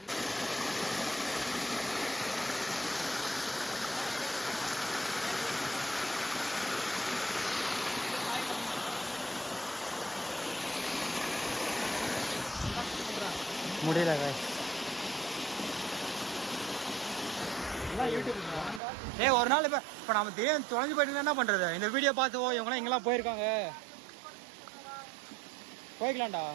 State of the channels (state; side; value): drops out; left; at 18.8 s